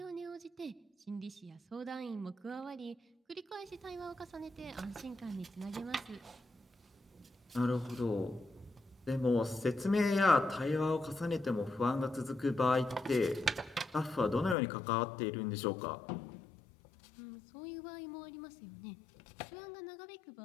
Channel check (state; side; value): drops out; right; at 14.6 s